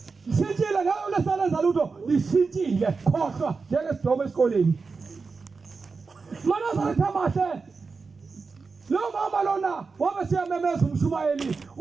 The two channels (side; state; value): left; quieter; 4.6 dB